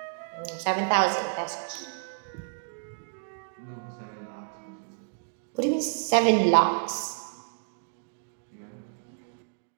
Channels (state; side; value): silent; left; digital silence